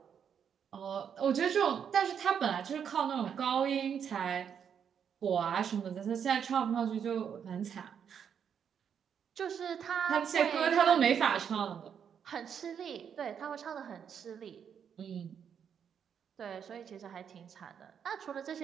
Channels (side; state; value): left; quieter; 7.8 dB